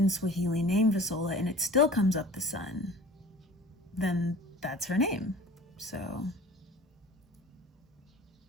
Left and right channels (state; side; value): normal; both; correlation 0.43